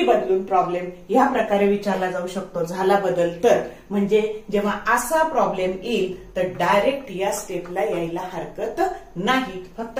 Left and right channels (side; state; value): both; identical; correlation 1.00